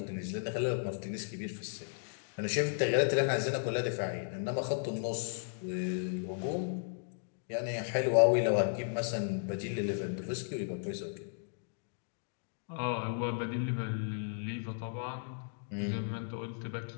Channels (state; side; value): silent; right; digital silence